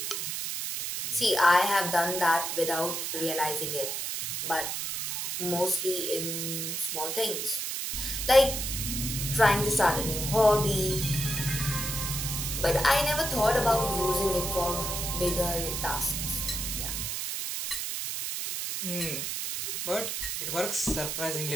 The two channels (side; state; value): right; noise; hiss, 3 dB below the sound